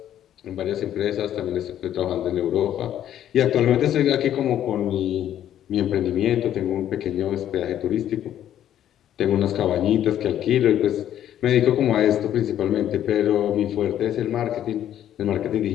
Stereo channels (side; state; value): right; quieter; 11.1 dB